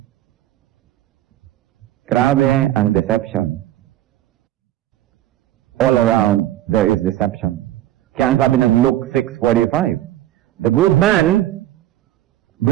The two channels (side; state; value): left; quieter; 13.8 dB